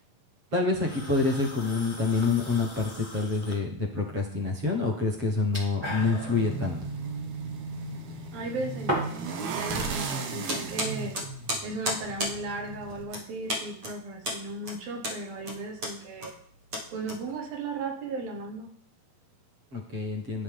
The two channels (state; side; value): late; left; 8.5 ms